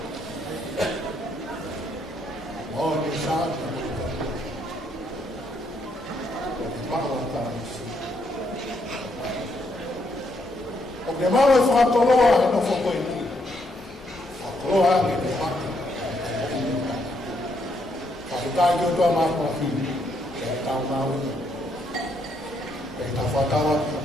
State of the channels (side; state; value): both; normal; correlation 0.75